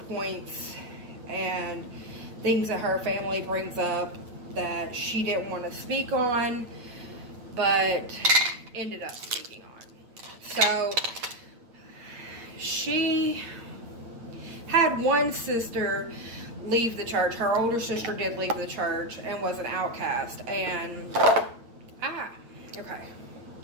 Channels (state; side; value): late; left; 9.3 ms